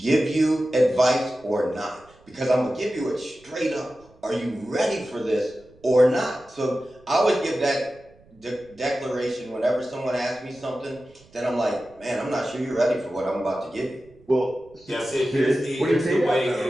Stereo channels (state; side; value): noise; right; rumble, 29 dB below the sound